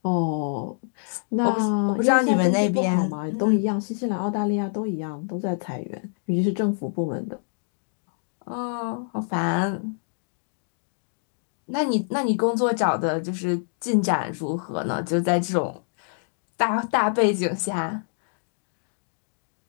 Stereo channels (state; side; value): silent; right; digital silence